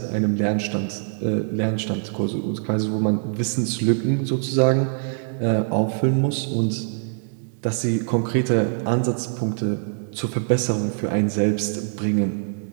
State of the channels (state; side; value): silent; left; 60 dB below the other